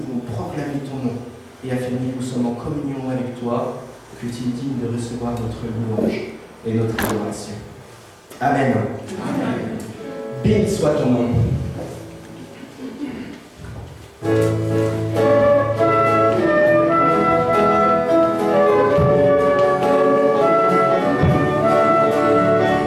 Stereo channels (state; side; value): identical; both; correlation 1.00